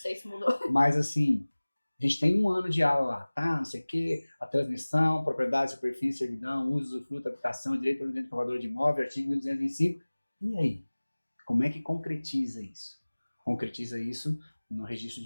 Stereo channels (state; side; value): inverted; both; correlation -1.00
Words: se mudou. Mas assim, a gente tem 1 ano de aula lá, tá? Não sei o quê, a transmissão, propriedade, superfície, servidão, uso, usufruto, habitação, direito ao direito comprador de imóvel, artigo 1225. E aí? Como é que concretiza isso? Concretiza isso no registro